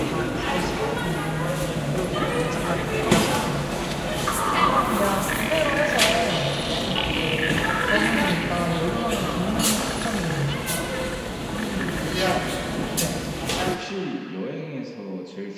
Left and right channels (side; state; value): both; identical; correlation 1.00